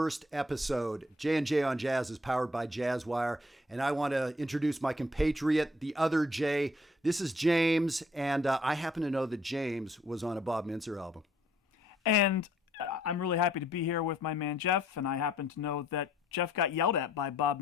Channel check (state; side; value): normal; both; correlation 0.64